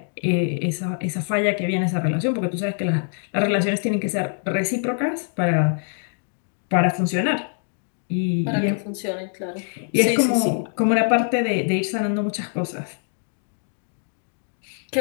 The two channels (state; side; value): silent; right; 61 dB below the other